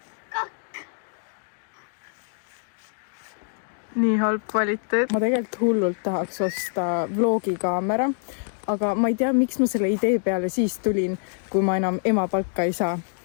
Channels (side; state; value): right; silent; digital silence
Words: Nii halb kvaliteet. Ma tegelikult hullult tahaks osta vlogikaamera, aga ma ei tea, miks ma selle idee peale siis tulin, kui ma enam ema palka ei saa.